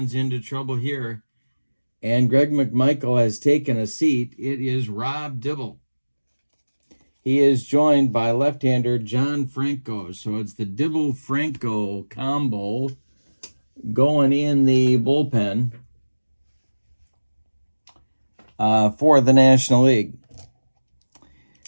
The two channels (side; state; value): both; inverted; correlation -1.00